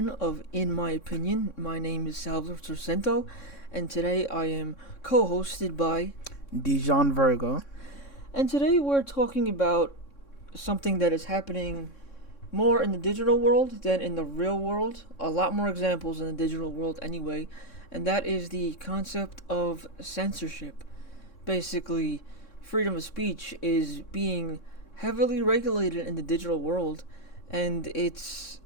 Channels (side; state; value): right; late; 3.6 ms